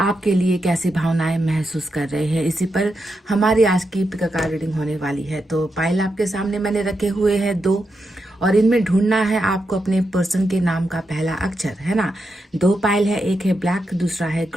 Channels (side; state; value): both; normal; correlation 0.86